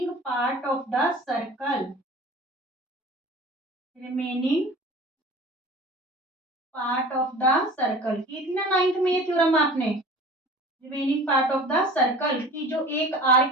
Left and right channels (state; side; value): normal; both; correlation 0.42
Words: part of the circle, कितना 9th में ये थ्योरम आपने, remaining part of the circle की जो एक